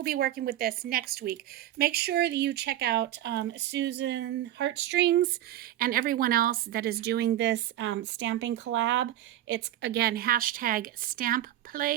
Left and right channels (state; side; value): quieter; left; 12.9 dB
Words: be working with this next week. Make sure that you check out Susan Heartstrings and everyone else that is doing this stamping collab. It's, again,